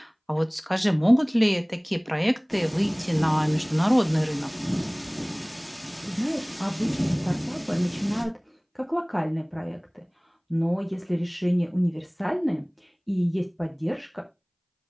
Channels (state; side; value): identical; both; correlation 1.00